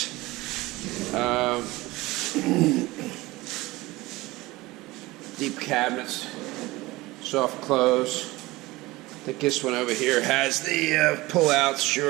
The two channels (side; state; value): left; quieter; 20.2 dB